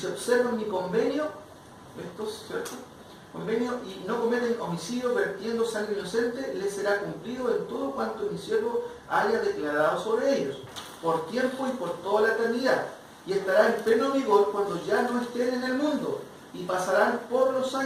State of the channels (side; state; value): both; identical; correlation 1.00